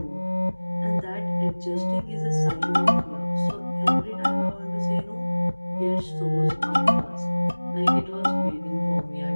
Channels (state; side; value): inverted; both; correlation -1.00